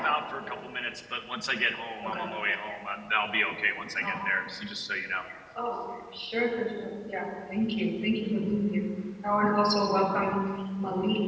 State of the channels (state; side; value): identical; both; correlation 1.00